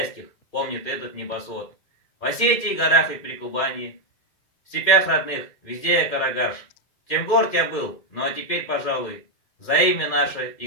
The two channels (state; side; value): late; right; 2.1 ms